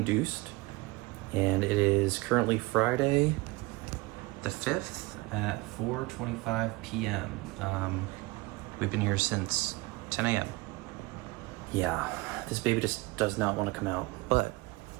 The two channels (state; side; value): quieter; left; 22.7 dB